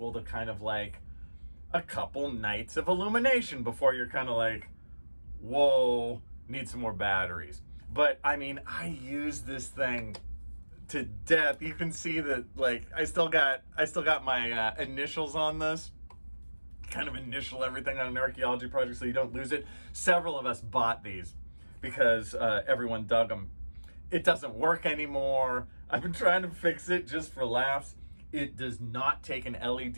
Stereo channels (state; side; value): inverted; both; correlation -1.00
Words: to kind of like a couple nights of illumination before you're kind of like, whoa, need some more batteries. But I mean, I use this thing to death. You can see that, like, I still got my initials on this. Kind of initial everything on an archaeology project so you don't lose it. Several of us bought these because everyone dug them. It doesn't work anymore. I've been trying to fix it just for laughs. It does not take an